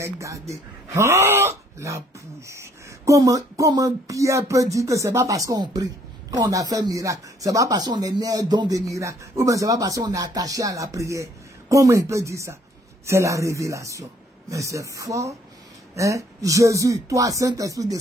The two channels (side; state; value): both; normal; correlation 0.63